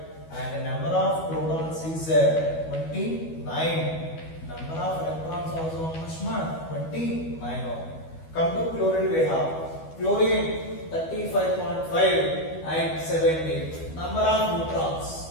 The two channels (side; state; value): right; late; 12 ms